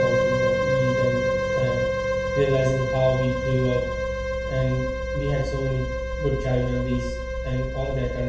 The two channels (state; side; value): identical; both; correlation 1.00